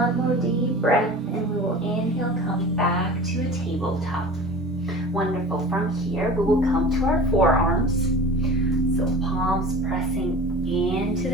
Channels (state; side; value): normal; both; correlation 0.38